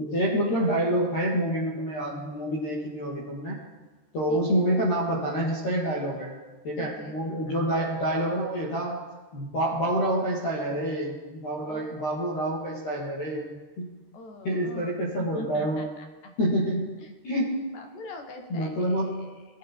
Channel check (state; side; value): late; right; 13 ms